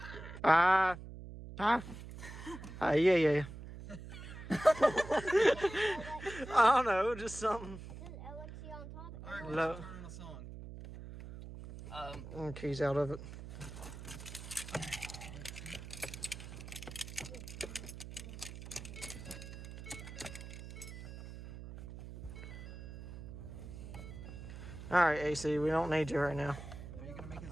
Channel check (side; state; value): right; noise; hum, 11 dB below the sound